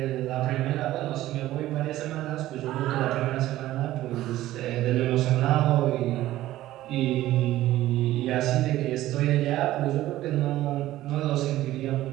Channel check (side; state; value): left; quieter; 15.0 dB